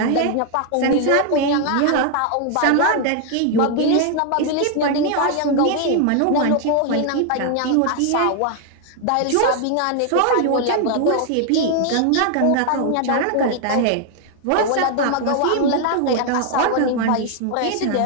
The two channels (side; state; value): both; different; correlation 0.00